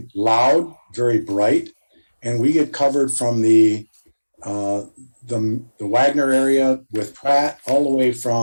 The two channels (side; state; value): both; inverted; correlation -1.00